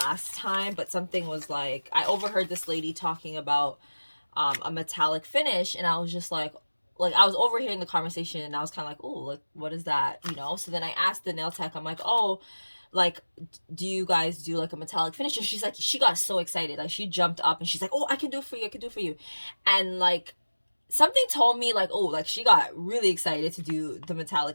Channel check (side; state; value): both; inverted; correlation -1.00